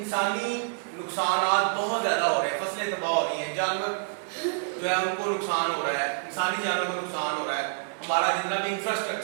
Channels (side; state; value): left; silent; digital silence